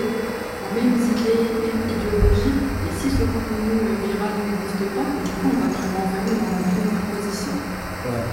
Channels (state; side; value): identical; both; correlation 1.00